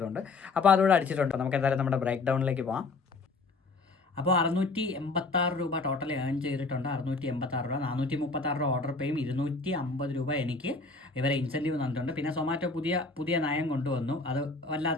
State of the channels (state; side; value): quieter; right; 3.7 dB